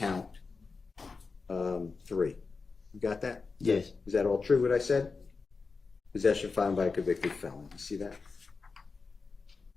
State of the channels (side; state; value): right; quieter; 4.5 dB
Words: 3. You got that? Yes. Is that all true, what I said? Possession of firearm by a convicted felon. You see that?